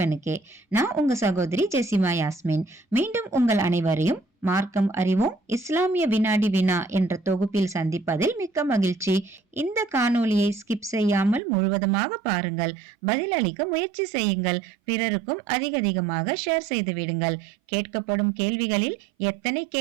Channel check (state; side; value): drops out; left; at 11.4 s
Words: நான் உங்க சகோதரி ஜெசிமா யாஸ்மின். மீண்டும் உங்கள் அனைவரையும் மார்க்கம் அறிவோம் இஸ்லாமிய வினாடி வினா என்ற தொகுப்பில் சந்திப்பதில் மிக்க மகிழ்ச்சி. இந்த காணொலியை ஸ்கிப் செய்யாமல் முழுவதுமாக பாருங்கள். பதிலளிக்க முயற்சி செய்யுங்கள். பிறருக்கும் அதிகமாக ஷேர் செய்து விடுங்கள். கேட்கப்படும் கேள்விகளில் எத்தனை